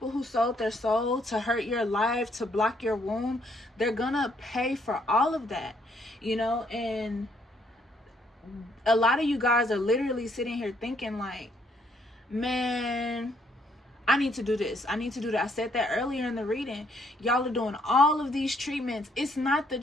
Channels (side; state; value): both; normal; correlation 0.69